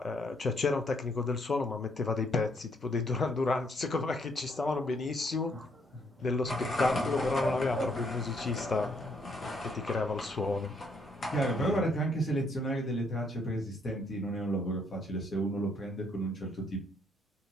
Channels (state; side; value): normal; both; correlation 0.70